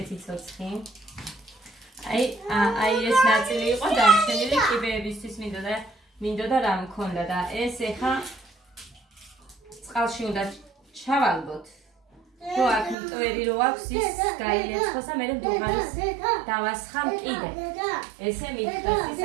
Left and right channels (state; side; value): drops out; left; at 13.0 s